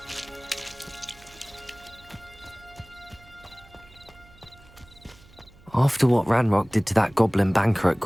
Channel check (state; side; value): noise; right; hum, 25 dB below the sound